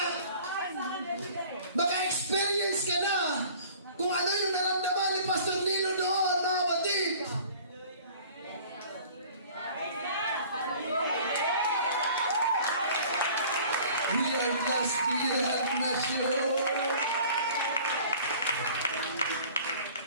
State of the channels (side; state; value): both; inverted; correlation -0.48